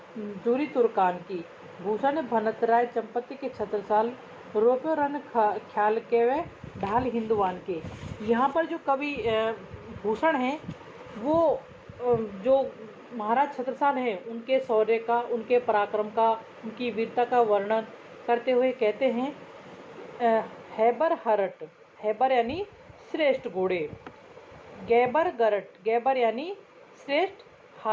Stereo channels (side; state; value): both; identical; correlation 1.00